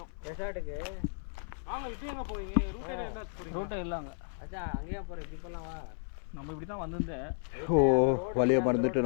ரெசார்ட்டுக்கு வாங்க இப்போ எங்கே போவீங்க? ரூட்டே என்ன போகிறீங்க? ரோட்டை இல்லைங்க. அச்சா அங்கேயே போகிறேன். இப்படி போகலாம் வா. நம்ம இப்படி தான் வந்திருந்தேன். ஓ வழியை மறந்துட்டு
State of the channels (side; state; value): right; silent; 56 dB below the other